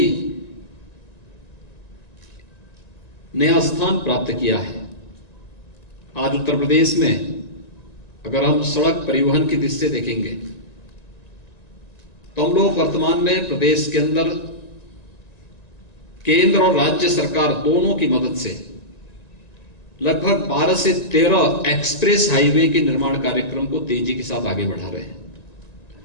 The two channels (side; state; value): right; late; 1.9 ms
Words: नया स्थान प्राप्त किया है। आज उत्तर प्रदेश में अगर हम सड़क परिवहन की दृष्टि से देखेंगे तो हम लोग वर्तमान में प्रदेश के अंदर केंद्र और राज्य सरकार दोनों की मदद से लगभग 12 से 13 एक्सप्रेस हाईवे के निर्माण कार्यक्रम को तेजी के साथ आगे बढ़ा रहे हैं।